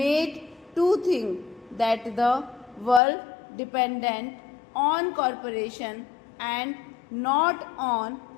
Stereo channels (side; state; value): right; drops out; at 3.0 s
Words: to think that the world dependent on cooperation and not on